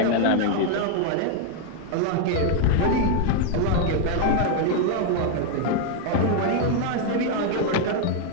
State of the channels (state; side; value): different; both; correlation 0.00